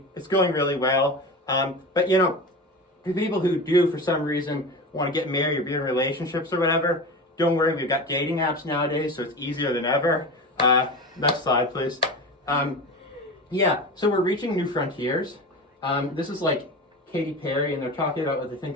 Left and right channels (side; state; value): both; normal; correlation 0.28